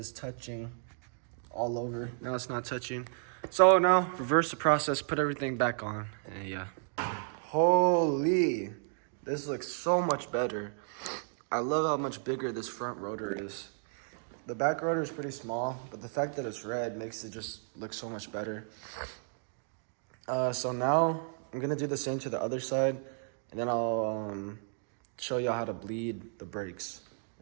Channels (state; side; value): silent; left; 56 dB below the other